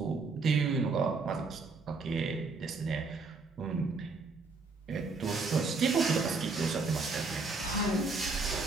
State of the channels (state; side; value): quieter; left; 3.9 dB